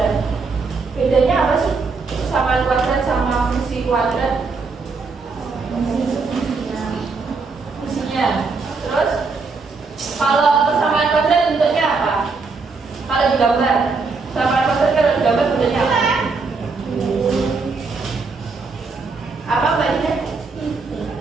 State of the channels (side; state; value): left; quieter; 4.3 dB